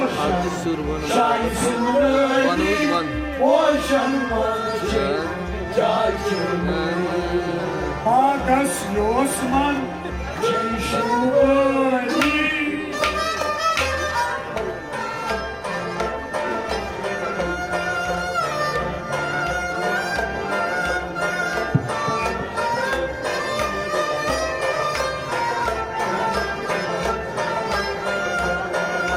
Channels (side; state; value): both; identical; correlation 1.00